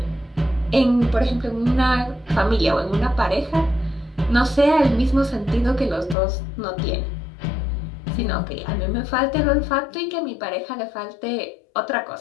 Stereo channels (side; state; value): right; drops out; at 6.2 s